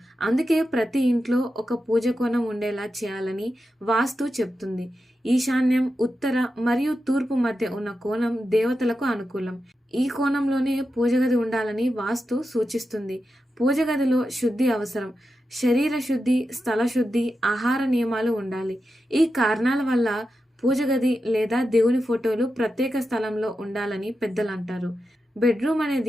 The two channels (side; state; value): both; normal; correlation 0.89